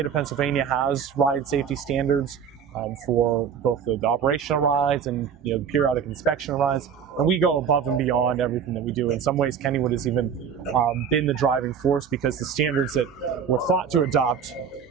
of Pennsylvania has ride safety standards for both the operational rides and the periodic inspection rides. and we go above and beyond everything that we do. In some ways, Kennywood has even been the driving force, because the standards that we're thought to adopt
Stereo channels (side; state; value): left; quieter; 7.4 dB